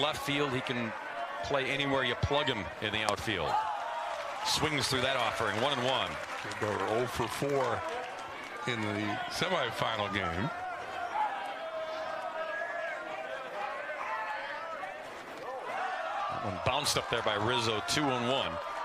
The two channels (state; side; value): identical; both; correlation 1.00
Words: left field. He can play anywhere you plug him in the outfield. Swings through that offering. 1-1. They go 0 for 4 in the semifinal game. That one bounced up there by Rizzo. 2-1.